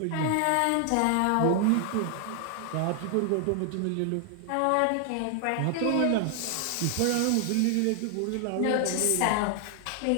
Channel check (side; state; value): both; different; correlation 0.00